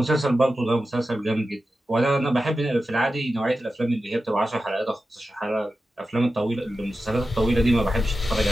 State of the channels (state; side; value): normal; both; correlation 0.92